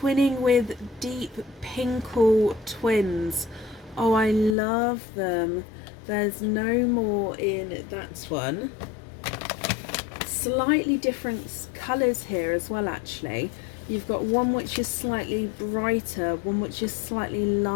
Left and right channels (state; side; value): drops out; right; at 4.5 s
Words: with Deep Pinkle twins. Oh, I love them. There's no more in that one. Slightly different colours here as well, actually. You've got one which is slightly brighter, one which is slightly